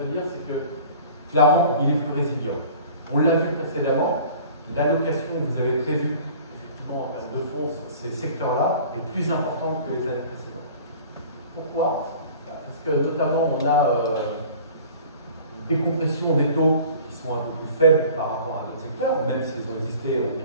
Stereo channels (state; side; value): inverted; both; correlation -0.46